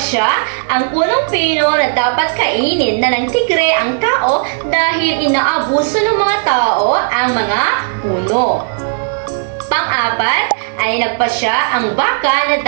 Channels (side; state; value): left; silent; digital silence